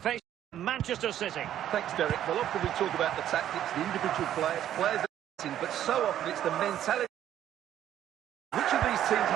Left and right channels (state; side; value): quieter; left; 11.3 dB